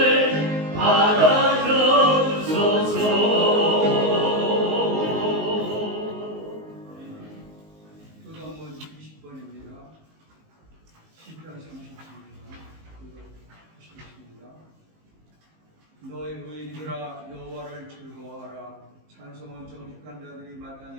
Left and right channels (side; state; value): left; late; 19 ms